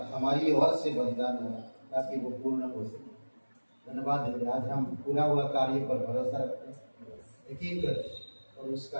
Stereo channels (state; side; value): inverted; both; correlation -1.00